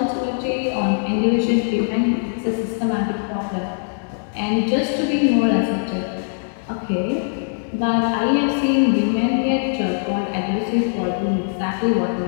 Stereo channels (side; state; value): right; silent; 65 dB below the other